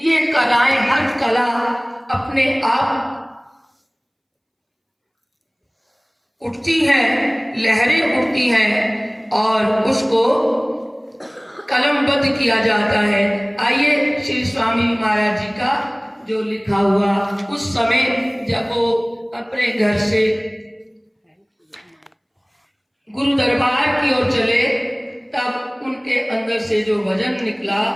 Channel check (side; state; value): both; identical; correlation 1.00